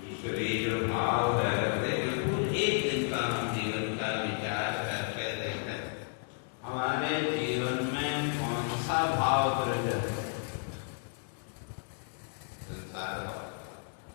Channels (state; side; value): silent; right; 56 dB below the other